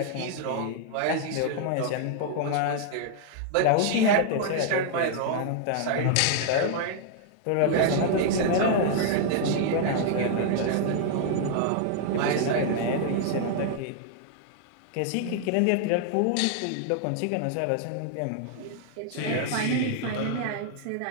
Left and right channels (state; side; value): different; both; correlation 0.00